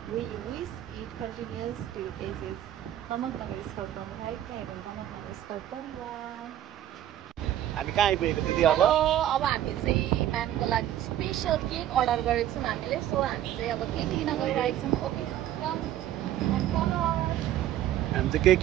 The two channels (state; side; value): quieter; left; 12.1 dB